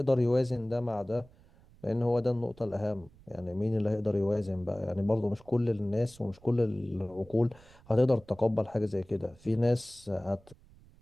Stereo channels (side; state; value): right; noise; rumble, 25 dB below the sound